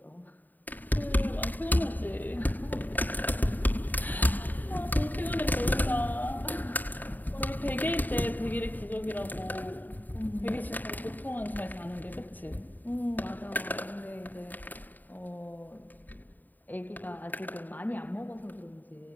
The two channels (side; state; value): right; late; 0.086 ms